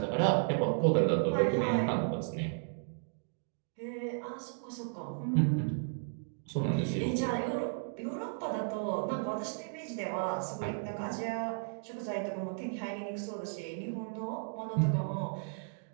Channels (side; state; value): left; silent; digital silence